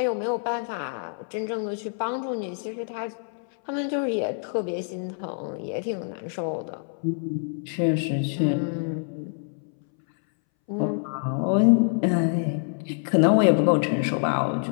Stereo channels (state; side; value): silent; right; 61 dB below the other